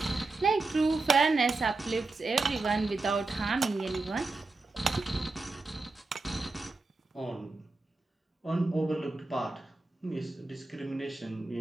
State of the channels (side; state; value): left; quieter; 3.5 dB